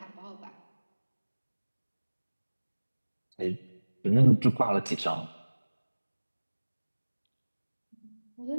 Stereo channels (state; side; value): inverted; both; correlation -1.00